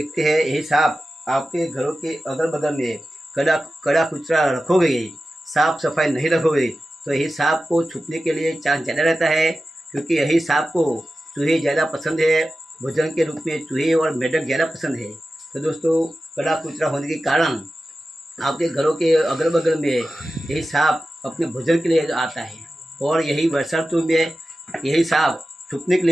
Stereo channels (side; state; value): both; normal; correlation 0.94